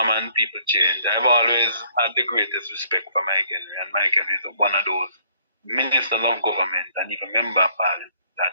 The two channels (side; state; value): both; inverted; correlation -0.64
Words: and people change. I've always had the greatest respect for Mike Henry, and Mike Henry is one of those ministers of government and even member of parliament that